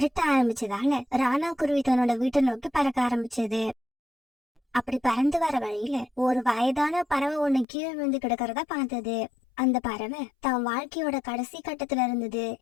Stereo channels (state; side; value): drops out; right; at 7.7 s